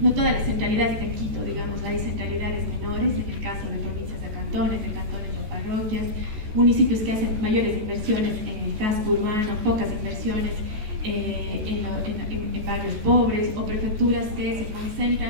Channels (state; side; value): late; left; 14 ms